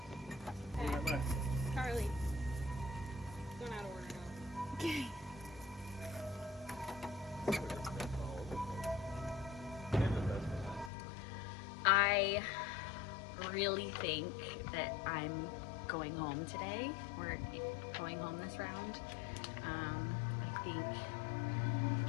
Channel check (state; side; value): drops out; right; at 10.9 s